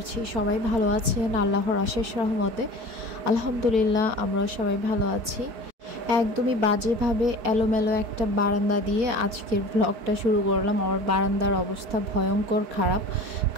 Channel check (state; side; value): late; left; 4.2 ms